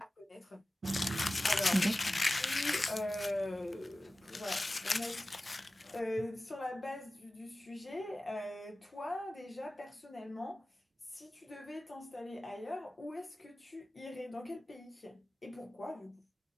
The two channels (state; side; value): normal; both; correlation 0.96